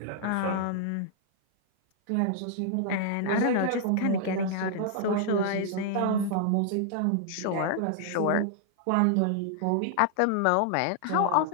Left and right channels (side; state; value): both; different; correlation -0.01